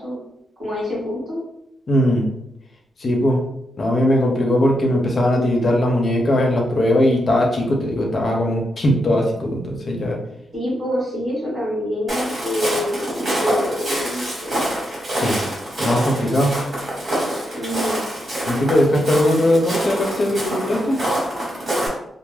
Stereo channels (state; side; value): normal; both; correlation 0.83